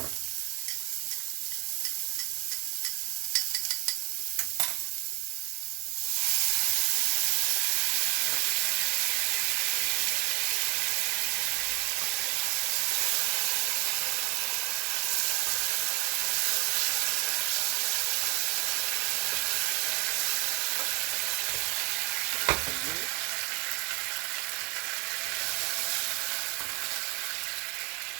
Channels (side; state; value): left; quieter; 28.2 dB